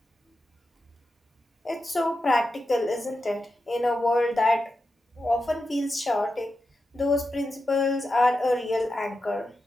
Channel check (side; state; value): both; normal; correlation 0.90